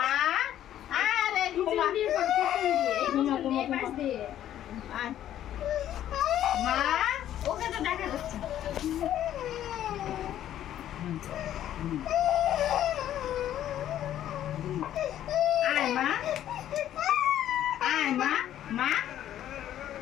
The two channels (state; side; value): quieter; right; 11.6 dB